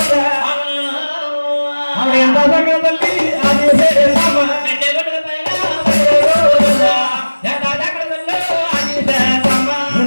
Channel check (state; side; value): inverted; both; correlation -1.00